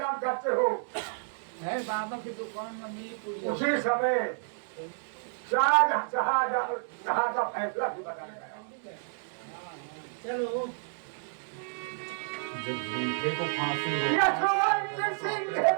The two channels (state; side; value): silent; left; digital silence